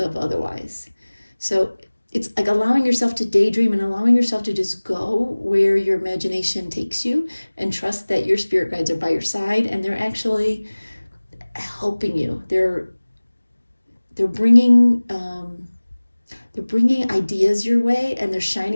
otherwise. So it's like allowing yourself to daydream and allowing yourself to just go where your imagination takes you, and trust that your spirit guides are by your side and they're actually helping you. They're bringing ideas your way, and they're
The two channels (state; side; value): inverted; both; correlation -1.00